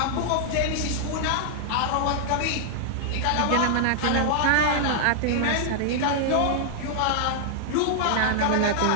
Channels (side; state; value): both; different; correlation -0.01